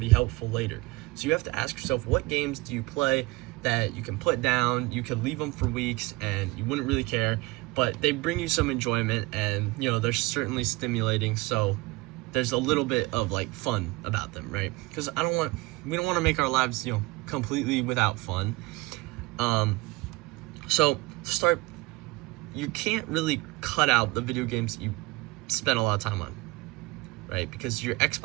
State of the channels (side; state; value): left; quieter; 22.1 dB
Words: helpful later. So you have to ask yourself, what games do you play that you can put down, you could leave them for weeks and you wouldn't really care, but they bring you some enjoyment, and they're certainly stimulating, so there's a little bit of like fun about them, right? Because we don't want to make our lives completely without fun. So to start, you can't really cut out the video games that you spend a lot of time on, right? Because your